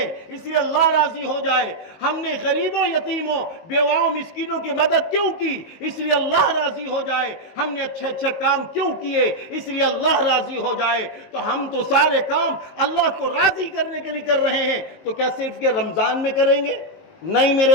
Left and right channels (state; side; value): late; right; 19 ms